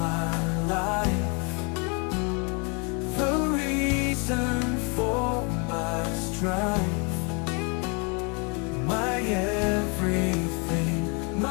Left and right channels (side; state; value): right; quieter; 33.3 dB